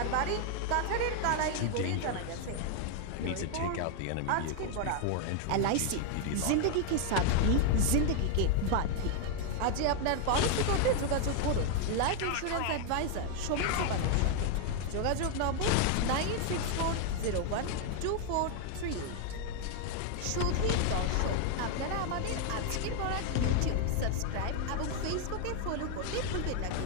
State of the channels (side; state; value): both; different; correlation 0.00